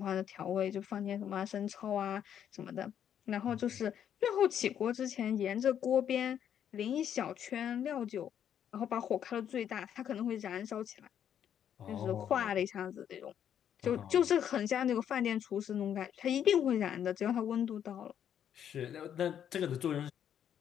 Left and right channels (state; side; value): quieter; right; 9.3 dB